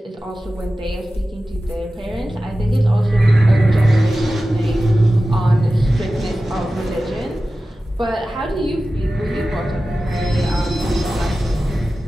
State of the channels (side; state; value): both; normal; correlation 0.95